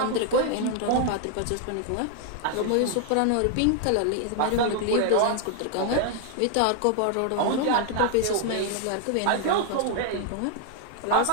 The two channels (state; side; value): different; both; correlation 0.00